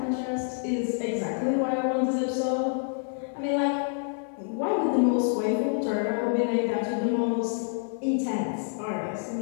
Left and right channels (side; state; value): right; silent; 55 dB below the other